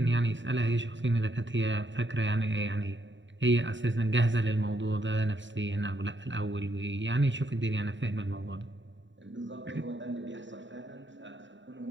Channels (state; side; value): late; left; 0.54 ms